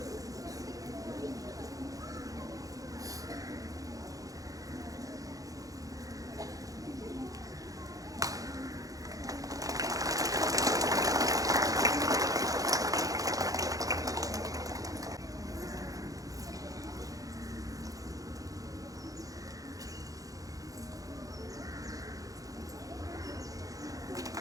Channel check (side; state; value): left; late; 0.17 ms